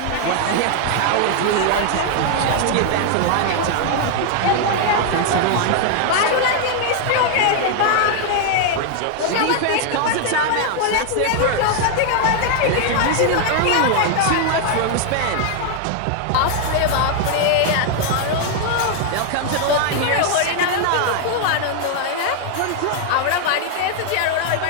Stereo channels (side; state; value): both; different; correlation 0.00